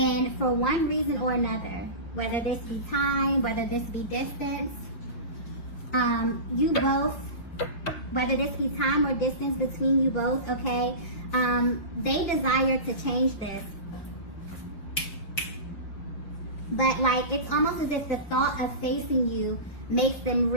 for one reason or another, whether this be time, whether this be distance, you both, whether this be time or distance between you both, okay, they desire to change this. But like, it's almost as if the thought of facing you makes them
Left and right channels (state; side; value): late; right; 5.7 ms